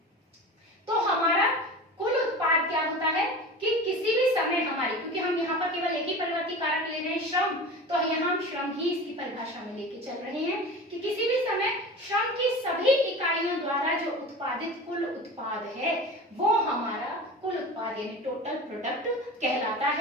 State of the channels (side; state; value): both; normal; correlation 0.33